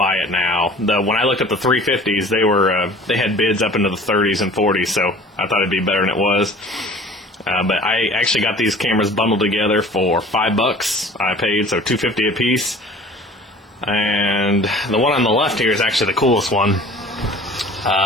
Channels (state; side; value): normal; both; correlation 0.46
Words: it now. When I looked at the 350s, they had bids up into the 30s and 40s, so I thought it'd be better than it was. But I actually got these cameras bundled together for $5. I paid, so $2.50 a piece. And the one on the left here is actually the coolest one.